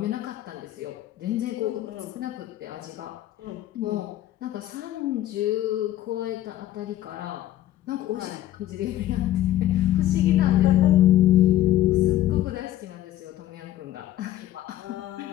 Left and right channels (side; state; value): right; quieter; 13.7 dB